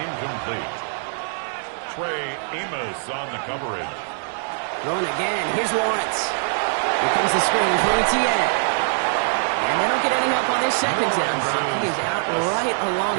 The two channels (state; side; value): silent; left; 63 dB below the other